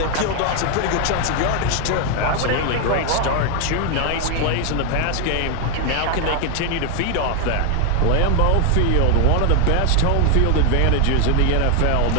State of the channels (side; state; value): both; different; correlation 0.01